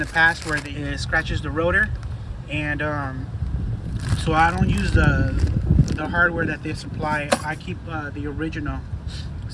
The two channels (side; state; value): both; identical; correlation 1.00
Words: past where it scratches the rotor, and so I don't use the hardware that they supply. I keep the original.